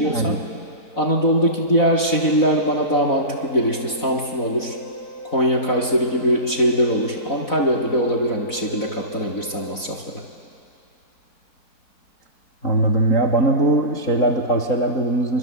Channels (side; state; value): right; late; 4.0 ms